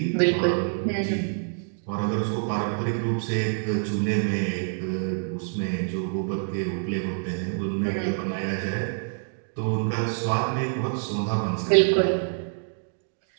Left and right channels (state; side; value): silent; left; 61 dB below the other